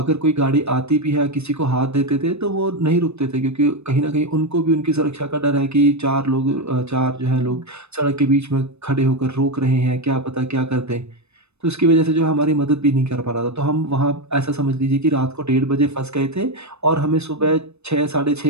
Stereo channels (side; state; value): left; late; 0.80 ms